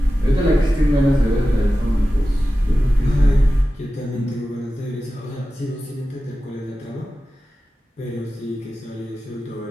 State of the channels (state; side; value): normal; both; correlation 0.94